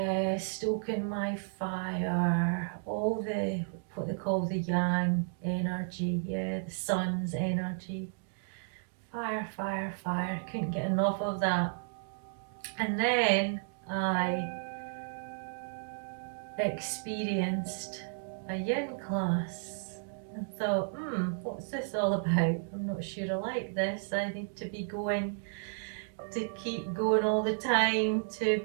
stoking my fire, all the, what they call the yang energy, yeah, the sun's energy. Fire, fire, fire, couldn't get enough of that. And then I experienced a Yin class and thought, what's this all about? I'm not sure I like this. I need to be going, to keep going all the time, to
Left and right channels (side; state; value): left; silent; digital silence